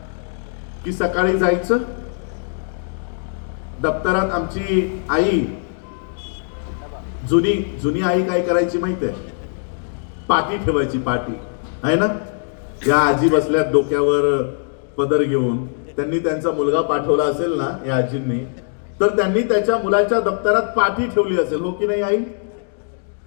की सकाळी जायचं, दप्तरात आमची आई, जुनी आई काय करायची माहिती आहे? पाटी ठेवायची, पाटी आहे ना. या आजी बसल्यात डोक्यावर पदर घेऊन, त्यांनी त्यांचा मुलगा पाठवला असेल ना या आजींनी, तर त्यांनी त्याच्या मुलाच्या दप्तरात पाटी ठेवली असेल, हो की नाही आई?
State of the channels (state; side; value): silent; right; digital silence